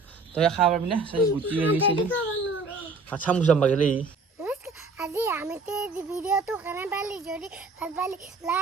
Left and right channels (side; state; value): left; quieter; 3.8 dB